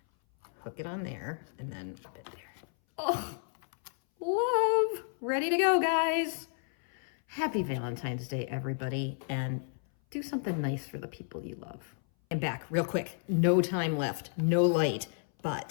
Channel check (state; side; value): silent; right; 57 dB below the other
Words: hook it on there, and then pop it there. Oh, love. Ready to go, guys. Happy Valentine's Day, everybody. And do something nice for the people you love. And back real quick, no time left, no light,